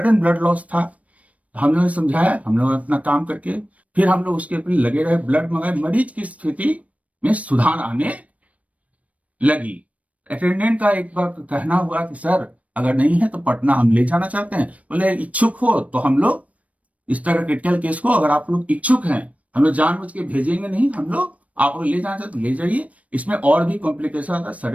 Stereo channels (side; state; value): left; late; 0.067 ms